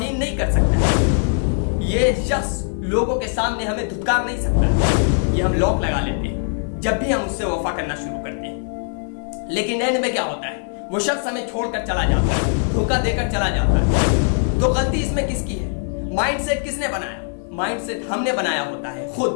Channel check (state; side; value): silent; right; 65 dB below the other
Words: نہیں کر سکتا، یہ شخص لوگوں کے سامنے ہمیں دھتکار نہیں سکتا۔ یہ ہم لاک لگا لیتے ہیں جب بھی ہم اس سے وفا کرنا شروع کرتے ہیں، لیکن اینڈ میں کیا ہوتا ہے، وہ شخص ہمیں چھوڑ کر چلا جاتا ہے، دھوکہ دے کر چلا جاتا ہے۔ تو غلطی اس میں کس کی ہے؟ مائنڈ سیٹ کس نے بنایا؟ مائنڈ سیٹ ہم نے بنایا ہوتا ہے خود